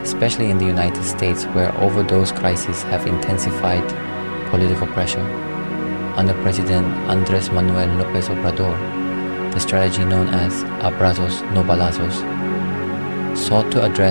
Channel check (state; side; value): inverted; both; correlation -1.00